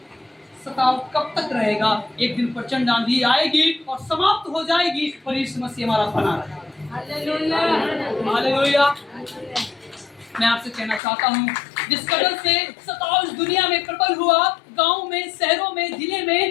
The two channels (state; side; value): drops out; right; at 11.0 s